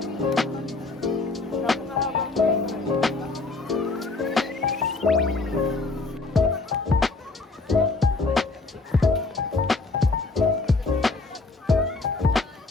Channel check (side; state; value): right; quieter; 3.6 dB